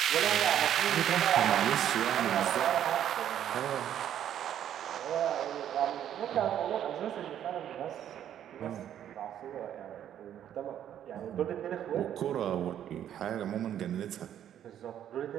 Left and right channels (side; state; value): left; quieter; 10.4 dB